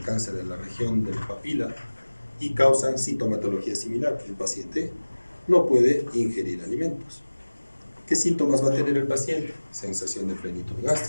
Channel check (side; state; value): both; inverted; correlation -1.00